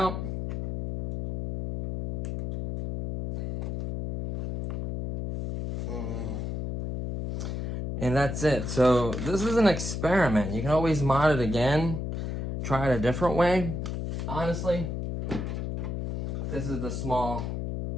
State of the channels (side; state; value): left; noise; hum, 3 dB below the sound